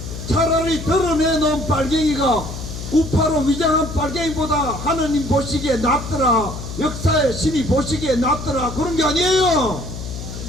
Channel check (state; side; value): noise; left; hum, 9 dB below the sound